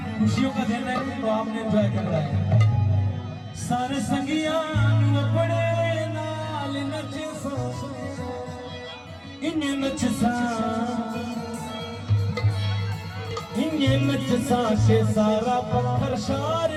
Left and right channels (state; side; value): identical; both; correlation 1.00